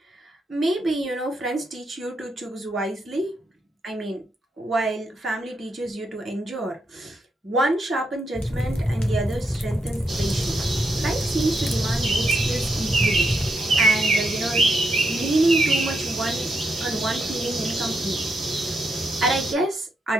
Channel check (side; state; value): both; normal; correlation 0.81